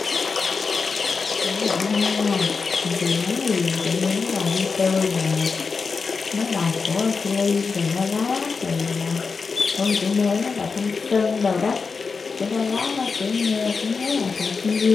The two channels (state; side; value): quieter; right; 4.9 dB